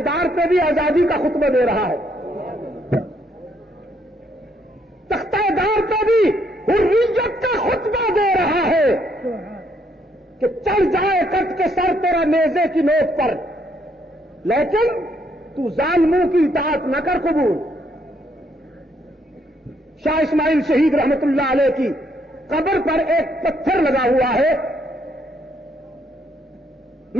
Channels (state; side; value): normal; both; correlation 0.71